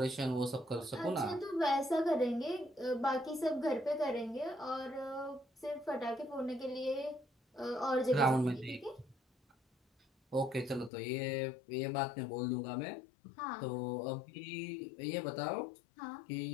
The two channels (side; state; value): right; drops out; at 10.9 s